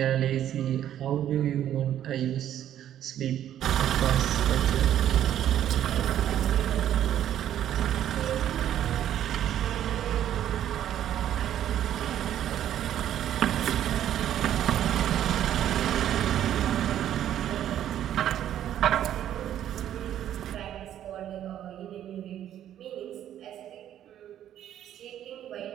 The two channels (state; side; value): quieter; left; 11.1 dB